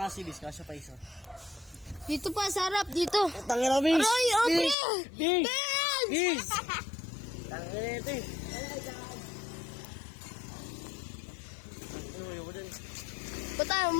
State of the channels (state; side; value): drops out; right; at 4.8 s